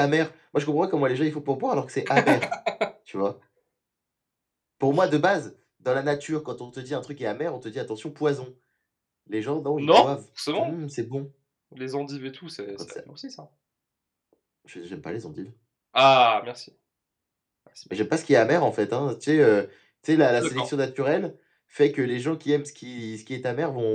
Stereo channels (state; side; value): identical; both; correlation 1.00